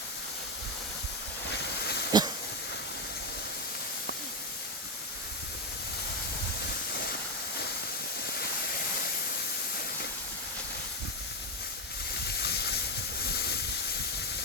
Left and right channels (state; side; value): normal; both; correlation 0.09